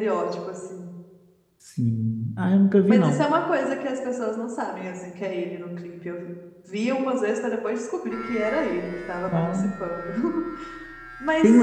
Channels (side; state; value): both; identical; correlation 1.00